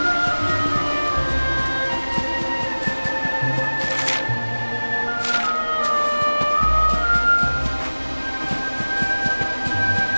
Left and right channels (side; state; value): both; inverted; correlation -1.00